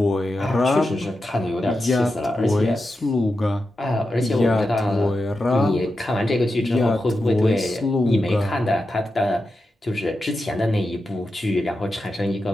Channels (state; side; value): normal; both; correlation 0.89